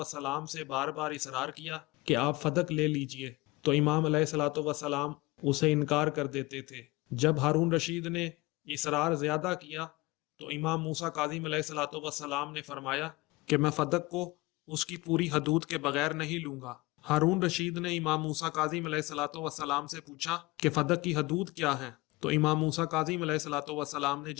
سے بار بار اصرار کیا کہ آپ فدق لے لیجئے، تو امام علیہ الصلوۃ والسلام اسے انکار کر دیتے تھے۔ جب ہارون رشید نے اصرار زیادہ کیا تو امام موسیٰ کاظم علیہ الصلوۃ والسلام نے فرمایا کہ میں فدق کو اس کی پوری حدود کے بغیر نہیں لوں گا۔ ہارون رشید نے امام موسیٰ کاظم علیہ الصلوۃ والسلام سے پوچھا کہ فدق کی حدود کیا ہیں؟ تو امام موسیٰ کاظم علیہ الصلوۃ والسلام نے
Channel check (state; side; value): quieter; right; 22.3 dB